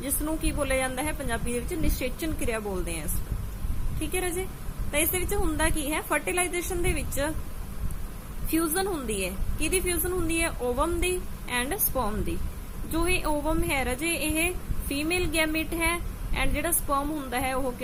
ਜਿਸ ਨੂੰ ਕੀ ਬੋਲਿਆ ਜਾਂਦਾ ਹੈ ਪੰਜਾਬੀ ਦੇ ਵਿੱਚ ਨਿਸ਼ੇਚਨ ਕਿਰਿਆ ਬੋਲਦੇ ਆ ਇਸ। ਠੀਕ ਹੈ ਰਾਜੇ, ਤਾਂ ਇਸ ਦੇ ਵਿੱਚ ਹੁੰਦਾ ਕੀ ਹੈ? fertilization ਦੇ ਵਿੱਚ ਫਿਊਜ਼ਨ ਹੁੰਦੀ ਹੈ। ਕਿਹਦੀ ਫਿਊਜ਼ਨ ਹੁੰਦੀ ਹੈ? ਓਵਮ ਦੀ ਐਂਡ ਸਪਰਮ ਦੀ। ਜੋ ਇਹ ਓਵਮ ਹੈ ਰਾਜੇ ਇਹ ਫੀਮੇਲ ਗੈਮੀਟ ਹੈ, ਐਂਡ ਜਿਹੜਾ ਸਪਰਮ ਹੁੰਦਾ ਹੈ ਉਹ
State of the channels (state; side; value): identical; both; correlation 1.00